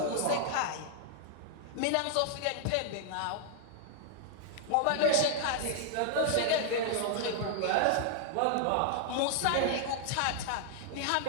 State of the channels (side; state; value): both; different; correlation 0.00